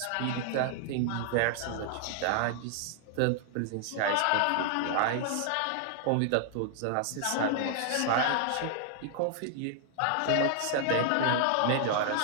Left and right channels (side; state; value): both; different; correlation -0.01